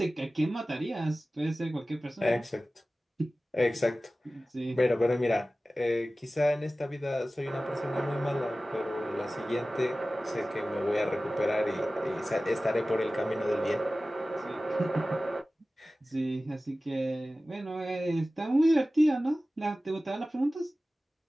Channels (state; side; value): normal; both; correlation 0.96